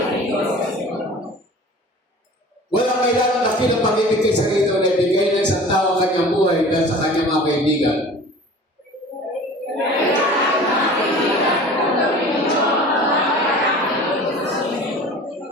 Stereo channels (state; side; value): normal; both; correlation 0.42